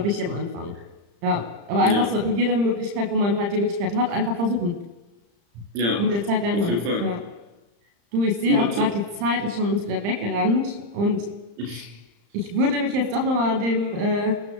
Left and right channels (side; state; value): left; late; 35 ms